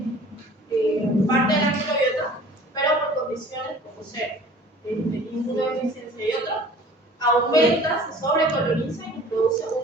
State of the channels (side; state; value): both; normal; correlation 0.47